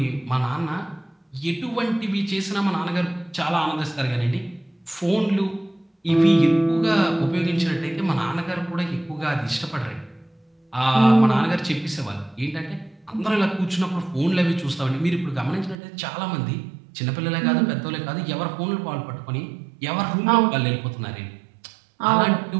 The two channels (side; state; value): left; drops out; at 15.8 s